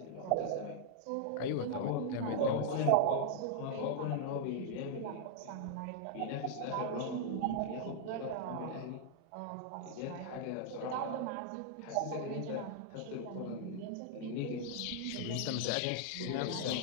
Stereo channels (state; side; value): different; both; correlation -0.01